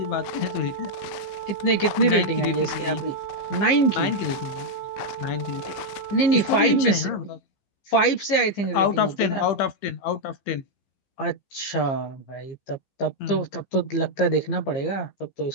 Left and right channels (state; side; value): late; right; 15 ms